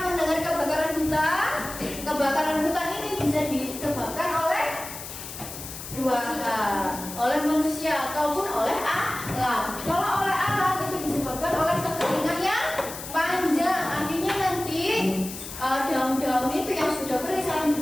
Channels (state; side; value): noise; left; hiss, 10 dB below the sound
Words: mendengar kebakaran hutan? Kebakaran hutan ini bisa disebabkan oleh 2 hal, oleh manusia ataupun oleh alam. Kalau oleh alam itu disebabkan oleh kekeringan yang panjang. Akhirnya nanti daun-daun itu yang sudah kering saling